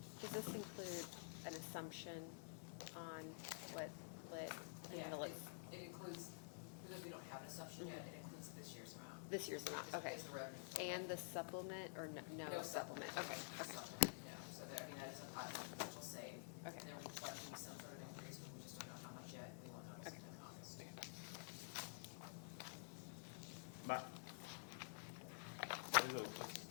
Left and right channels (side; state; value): right; silent; digital silence